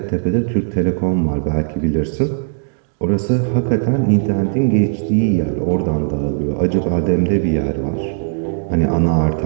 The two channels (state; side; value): silent; left; digital silence